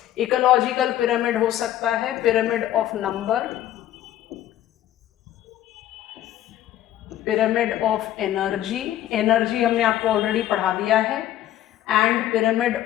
Ecological pyramid हो सकता है pyramid of number, pyramid of energy, energy हमने आपको ऑलरेडी पढ़ा दिया है, and pyramid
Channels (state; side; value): quieter; right; 12.6 dB